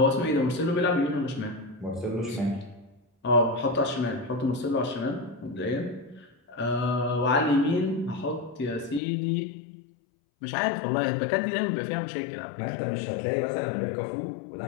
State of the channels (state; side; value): drops out; right; at 9.0 s